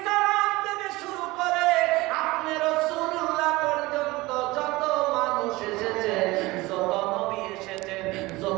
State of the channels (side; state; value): left; quieter; 20.9 dB